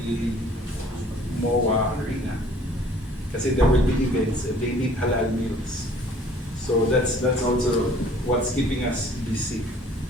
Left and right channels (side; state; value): both; normal; correlation 0.54